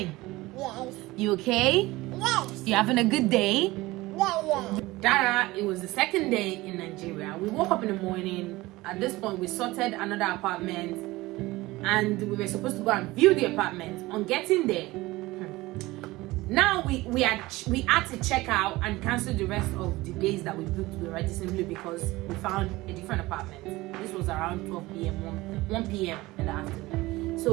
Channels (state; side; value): quieter; left; 19.7 dB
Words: Yes. You okay? Yes. You having a good day? Yeah. Dara, it was the second day in Nigeria. We woke up in the morning. At this point, we sorted another apartment, and we were supposed to go and view the apartment. On getting there, now we had to check out and cancel the rest of the days that we booked already, simply because we found a different apartment. This was around 12 p.m. 1 p.m. in the afternoon.